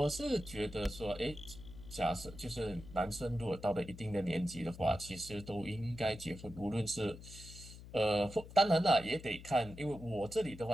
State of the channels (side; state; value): left; noise; hum, 15 dB below the sound